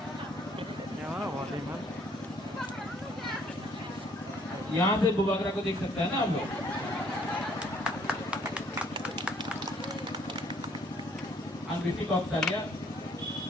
यहाँ से बुबागरा को देख सकता है ना हम लोग। ऋषि कौशल्या,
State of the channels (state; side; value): normal; both; correlation 0.63